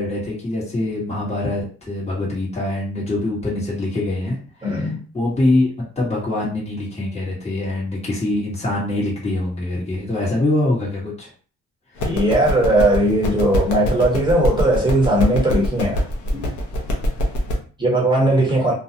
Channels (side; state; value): both; normal; correlation 0.64